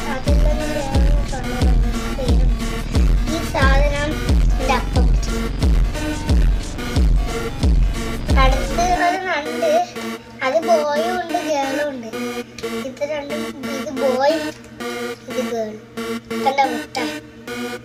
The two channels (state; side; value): identical; both; correlation 1.00